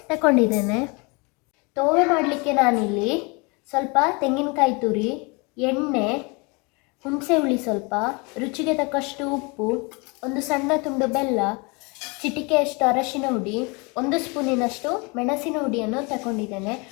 ತಗೊಂಡಿದ್ದೇನೆ. ತೋವೆ ಮಾಡಲಿಕ್ಕೆ ನಾನಿಲ್ಲಿ ಸ್ವಲ್ಪ ತೆಂಗಿನಕಾಯಿ ತುರಿ, ಎಣ್ಣೆ, ಹುಣಸೆ ಹುಳಿ ಸ್ವಲ್ಪ, ರುಚಿಗೆ ತಕ್ಕಷ್ಟು ಉಪ್ಪು, ಒಂದು ಸಣ್ಣ ತುಂಡು ಬೆಲ್ಲ, ಚಿಟಿಕೆಯಷ್ಟು ಅರಶಿನ ಹುಡಿ, 1 ಸ್ಪೂನಿನಷ್ಟು ಮೆಣಸಿನ ಹುಡಿಯನ್ನು ತಗೊಂಡಿದ್ದೇನೆ.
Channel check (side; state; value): right; quieter; 29.3 dB